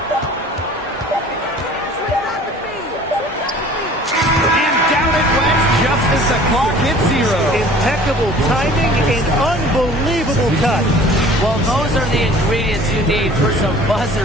Just as the clock hits 0. Impeccable timing and unbelievable touch. Well, those are the ingredients you need for some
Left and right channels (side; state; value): both; normal; correlation 0.48